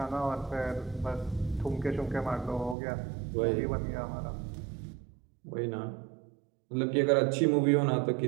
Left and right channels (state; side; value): drops out; left; at 2.8 s